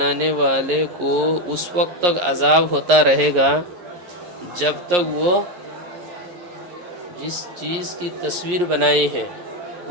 والے کو اس وقت تک عذاب ہوتا رہے گا جب تک وہ جس چیز کی تصویر بنائی ہے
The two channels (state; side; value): late; left; 11 ms